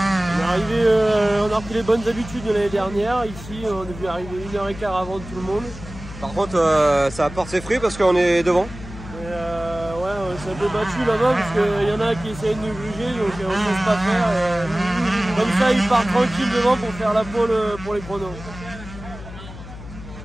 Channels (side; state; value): left; noise; hum, 14 dB below the sound